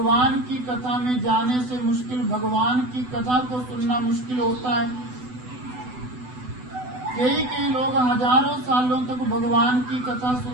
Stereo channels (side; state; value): left; late; 8.0 ms